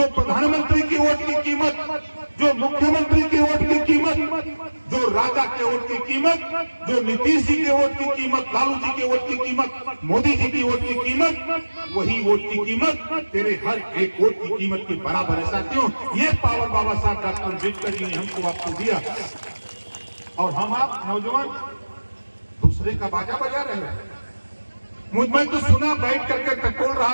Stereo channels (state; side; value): inverted; both; correlation -1.00